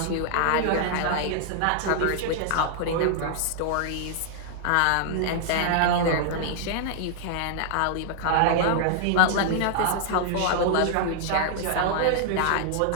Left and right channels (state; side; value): different; both; correlation -0.01